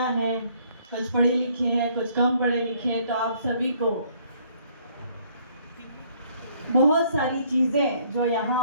हैं, कुछ पढ़ी लिखी हैं, कुछ कम पढ़े लिखे हैं, तो आप सभी को बहुत सारी चीज़ें जो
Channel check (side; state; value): both; inverted; correlation -0.63